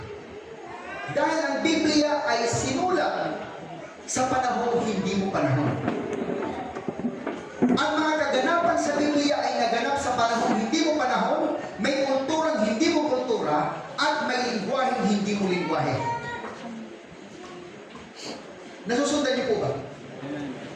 Dahil ang Biblia ay sinulat sa panahon hindi mo panahon. Ang mga kaganapan sa Biblia ay naganap sa panahon hindi mo panahon, may kulturang hindi mo kultura, at may lingwaheng hindi mo lingwahe. Nasusundan niyo po ba?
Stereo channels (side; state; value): both; identical; correlation 1.00